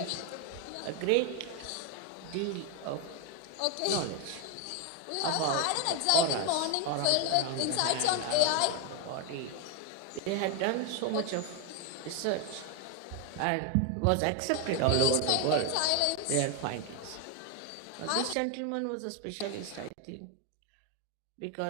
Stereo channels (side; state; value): both; different; correlation 0.01